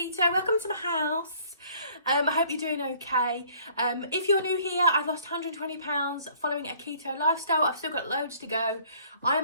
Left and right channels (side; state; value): both; inverted; correlation -0.58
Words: Welcome to my house. I hope you're doing okay. If you're new here, I've lost 120 pounds following a keto lifestyle. I've still got loads to go. I